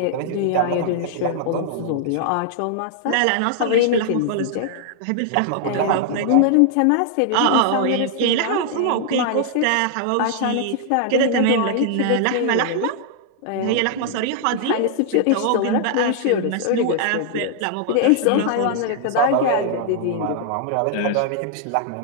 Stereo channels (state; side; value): different; both; correlation -0.01